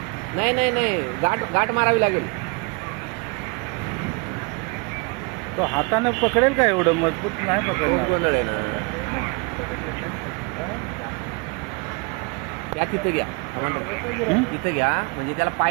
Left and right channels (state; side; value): quieter; left; 30.9 dB